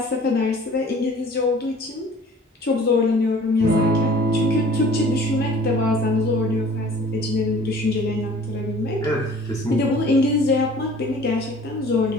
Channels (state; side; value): normal; both; correlation 0.48